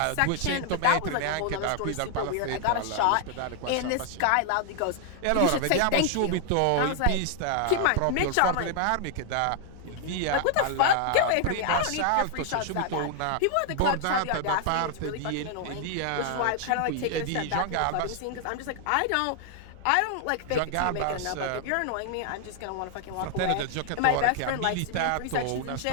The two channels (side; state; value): both; different; correlation 0.00